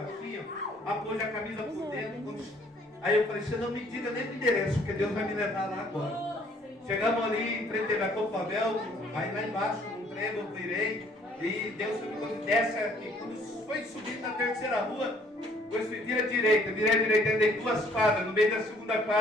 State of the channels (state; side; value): normal; both; correlation 0.61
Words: apôs a camisa por dentro. Aí eu falei, você não me diga nem o endereço, porque Deus vai me levar lá agora. Chegamos ali em frente da Copavel, aí lá embaixo, num trem, eu virei, e Deus me desce aqui. Quando foi subir na terceira rua, depois virei à direita, dei 2 quadras, no meio da segunda